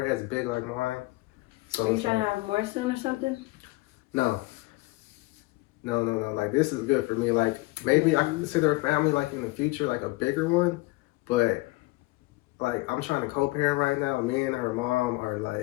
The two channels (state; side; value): quieter; right; 21.8 dB